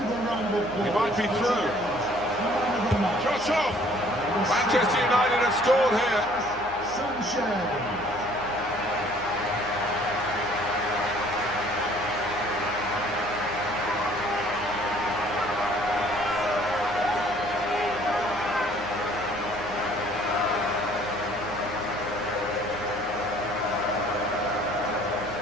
a round of applause. He might be through. Shot off! Manchester United have scored here. Sanchez.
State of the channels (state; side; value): noise; right; hum, 18 dB below the sound